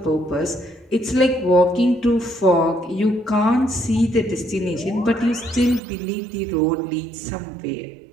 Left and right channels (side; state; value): left; drops out; at 5.8 s